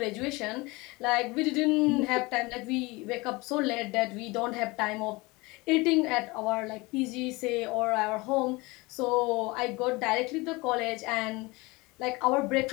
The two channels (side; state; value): right; quieter; 23.9 dB